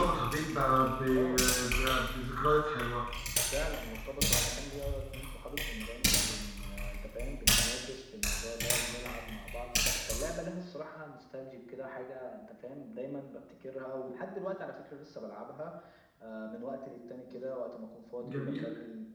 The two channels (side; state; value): both; identical; correlation 1.00